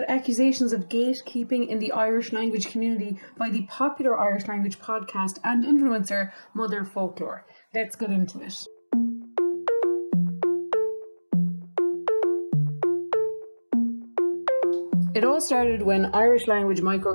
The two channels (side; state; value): both; inverted; correlation -1.00